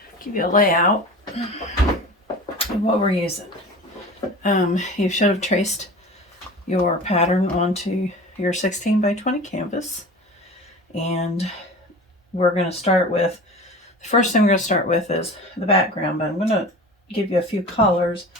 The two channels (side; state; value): both; normal; correlation 0.36